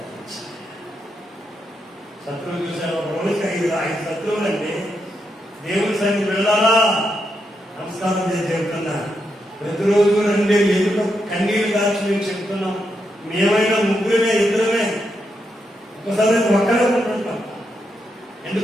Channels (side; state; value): both; normal; correlation 0.82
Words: శత్రువులు చూశారు. ఒక రోజుకి 5 శత్రువులు అంటే దేవుని సన్నిధి వెళ్ళాలా? నమస్కారం చేసి చెప్తున్నా. ప్రతిరోజు రండి, ఎదుట కన్నీరు కాల్చి మేము చెప్తున్నాం. మేమైనా ముగ్గురమే, ఇద్దరమే, ఒకసారి ఒక్కడే ఉంటుంటాం.